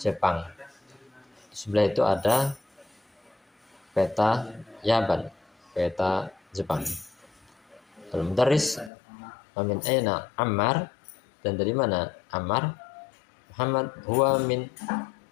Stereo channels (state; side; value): drops out; right; at 8.9 s